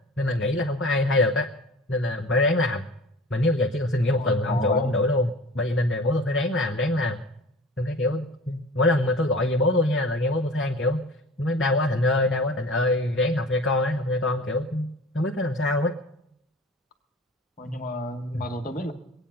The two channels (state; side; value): normal; both; correlation 0.41